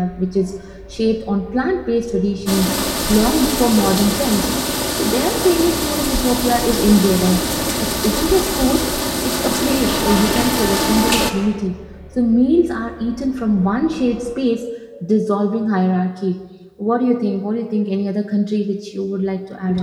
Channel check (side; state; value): both; identical; correlation 1.00